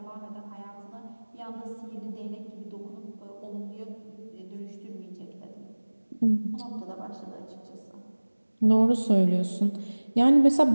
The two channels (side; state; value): both; inverted; correlation -1.00